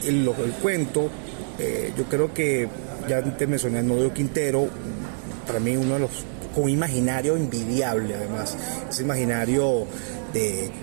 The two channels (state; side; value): silent; left; 62 dB below the other